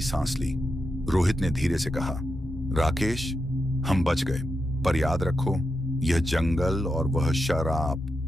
सांस ली। रोहित ने धीरे से कहा, राकेश, हम बच गए, पर याद रखो, यह जंगल और वह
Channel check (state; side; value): normal; both; correlation 0.87